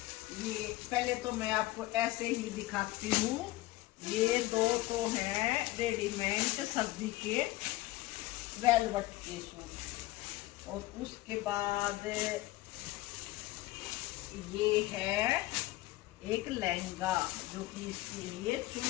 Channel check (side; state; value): right; quieter; 18.2 dB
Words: ये पहले तो मैं आपको ऐसे ही दिखाती हूँ। ये दो तो हैं रेडीमेड सर्दी के वेलवेट के सूट, और उसके बाद ये है एक लहंगा जो कि इसके लिए